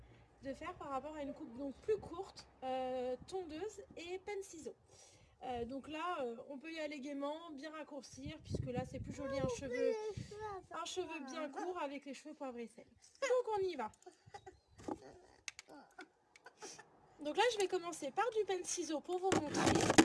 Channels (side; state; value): both; identical; correlation 1.00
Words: de faire par rapport à une coupe donc plus courte, tondeuse et penne-ciseaux. Donc là on peut y aller gaiement, bien raccourcir puisque là c'est plus joli un cheveu bien court avec les cheveux poivre et sel. Donc on y va. Donc là je vais commencer par du penne-ciseaux pour vous montrer